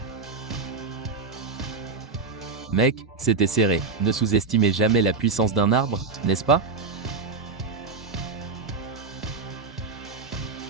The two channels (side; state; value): left; quieter; 4.3 dB